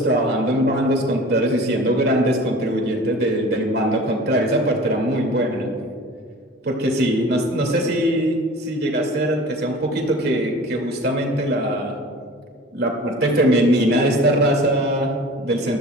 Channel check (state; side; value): normal; both; correlation 0.41